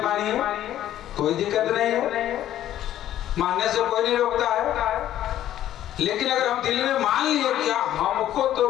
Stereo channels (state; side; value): quieter; right; 12.3 dB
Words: मानिए, कोई दिक्कत नहीं है, मानने से कोई नहीं रोकता है। लेकिन अगर हम दिल में मान लिए कि हमको